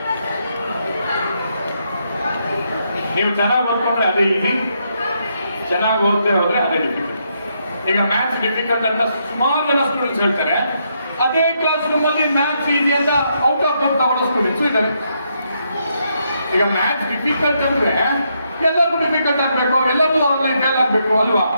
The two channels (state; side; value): inverted; both; correlation -0.78